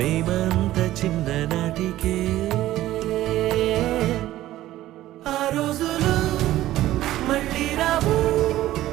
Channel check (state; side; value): quieter; left; 14.8 dB